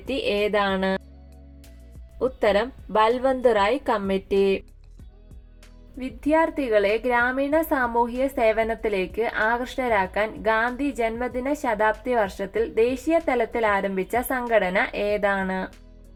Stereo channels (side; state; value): both; identical; correlation 1.00